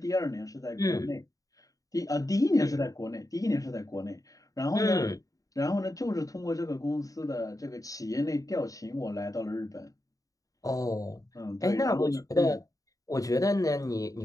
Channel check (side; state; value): right; late; 0.17 ms